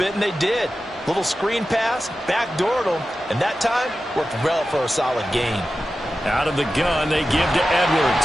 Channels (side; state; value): both; normal; correlation 0.93